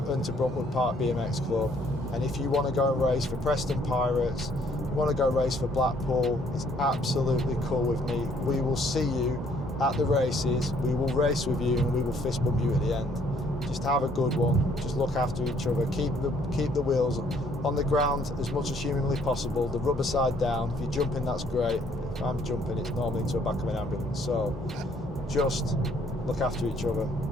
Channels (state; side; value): normal; both; correlation 0.64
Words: Park BMX Club, and if you want to go and race for Preston Pirates, you want to go race for Blackpool, it's absolutely cool with me. We will see you at the races, we will race with you, and we will fist bump you at the end. Just have a good one, just look after each other, keep the wheels on the ground as much as humanly possible, the rubber side down. If you're jumping, that's great. If I'm jumping, it's normally into the back of an ambulance. So just look after each other,